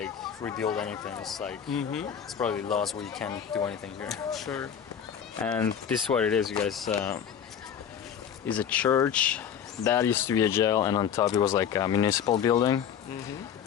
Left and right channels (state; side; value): quieter; right; 8.4 dB